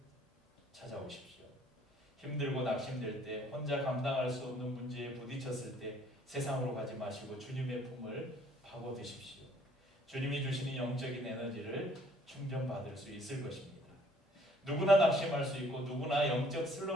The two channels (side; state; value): both; normal; correlation 0.60